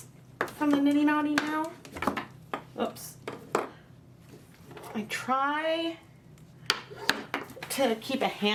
from the niddy noddy now. Oops. I try to keep a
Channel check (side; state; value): both; identical; correlation 1.00